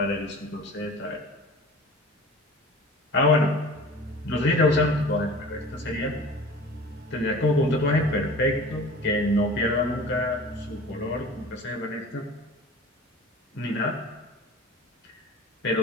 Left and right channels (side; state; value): both; normal; correlation 0.40